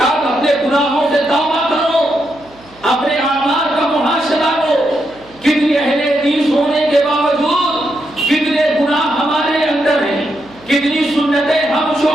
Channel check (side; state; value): right; noise; hum, 27 dB below the sound